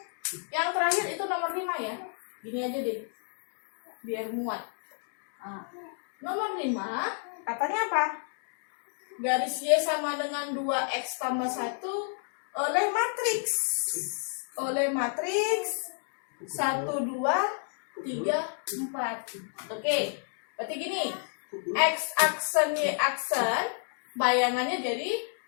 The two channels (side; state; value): right; silent; 57 dB below the other